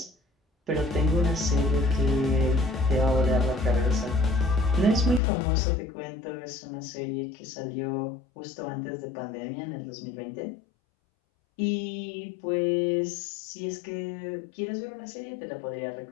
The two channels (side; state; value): right; drops out; at 5.2 s